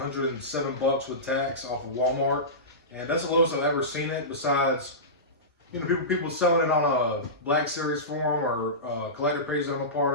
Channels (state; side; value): normal; both; correlation -0.19